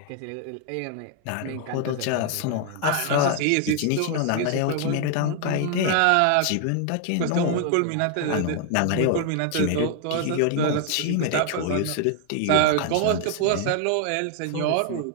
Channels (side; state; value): both; different; correlation 0.00